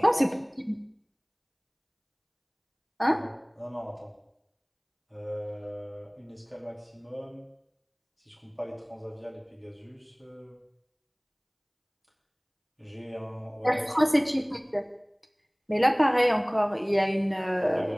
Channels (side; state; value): both; identical; correlation 1.00